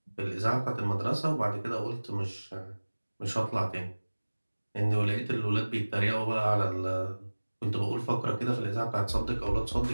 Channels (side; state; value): both; inverted; correlation -1.00